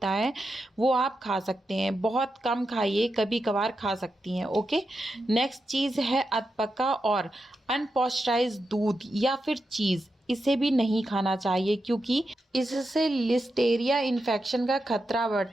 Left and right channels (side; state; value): both; normal; correlation 0.88